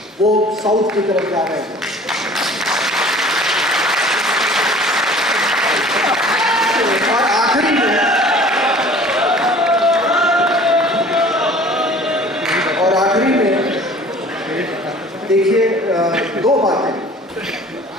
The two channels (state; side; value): normal; both; correlation 0.48